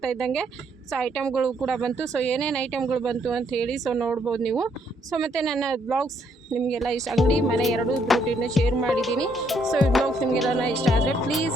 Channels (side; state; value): both; normal; correlation 0.71